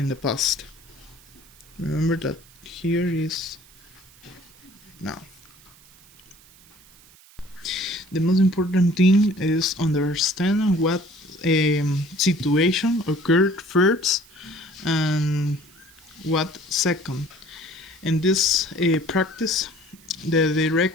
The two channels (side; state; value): right; noise; hiss, 26 dB below the sound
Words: the past. Remember that here is now. The most important thing is understand what situation occurred first and what second. In this practice, the